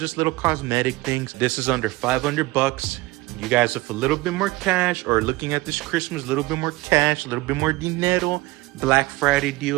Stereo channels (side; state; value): left; quieter; 20.7 dB